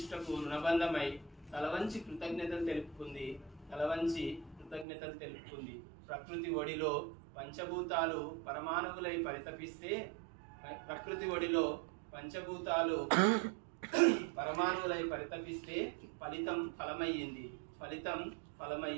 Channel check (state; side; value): drops out; left; at 4.9 s